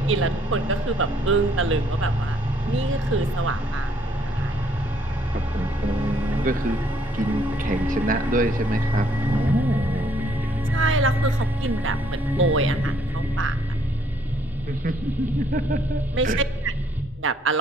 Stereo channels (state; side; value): normal; both; correlation 0.66